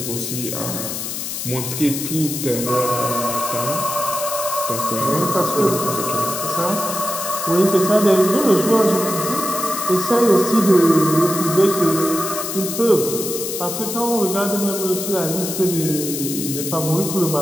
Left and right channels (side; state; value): left; noise; hiss, 5 dB below the sound